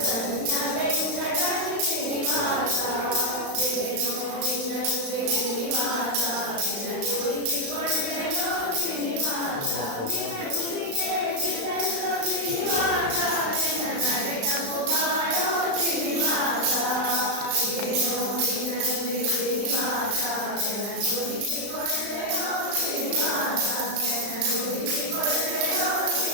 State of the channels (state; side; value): late; left; 35 ms